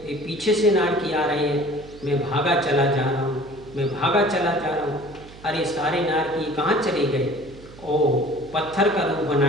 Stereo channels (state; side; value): noise; right; hum, 19 dB below the sound